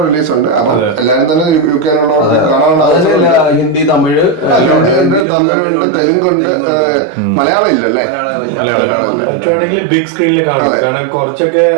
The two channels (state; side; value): drops out; left; at 5.2 s